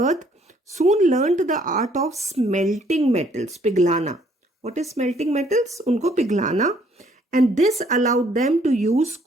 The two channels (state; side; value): normal; both; correlation 0.64